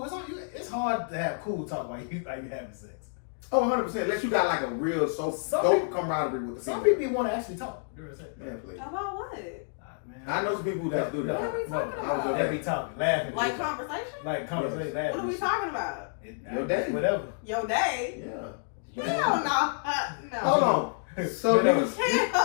It's hard to have cool talk while you having sex. Oh, 100%. Unless you got like a real dope camaraderie with the some female. people want to actually talk during sex. Yeah, please. About what? Man. I know some people who guys do that. What are we talking about? They be talking, laughing. Like conversation? Like conversation, laughing. What are we talking about? Your day. Whatever. Your day? Yeah. Hell no. Hold on. So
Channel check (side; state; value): right; silent; digital silence